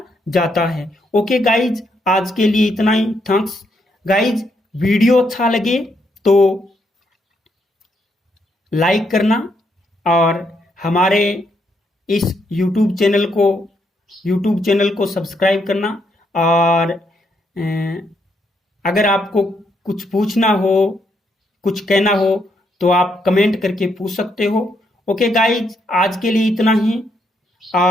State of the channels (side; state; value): both; normal; correlation 0.76